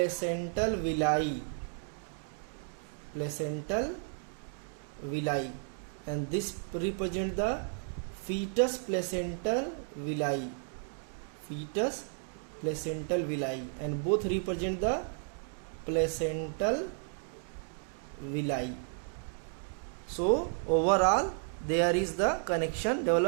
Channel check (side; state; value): left; silent; 56 dB below the other